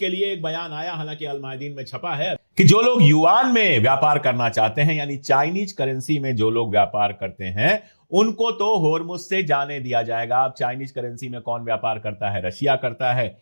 लिए एक बयान आया, हालांकि अल मायदीन में छपा है, कि जो लोग युआन में व्यापार करना चाहते हैं, यानी चाइनीज करेंसी में जो लोग व्यापार करते हैं, उनको तो हॉर्मुज से जाने दिया जाएगा। अब चाइनीज करेंसी में कौन व्यापार करता है? रशिया करता है,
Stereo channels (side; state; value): both; inverted; correlation -1.00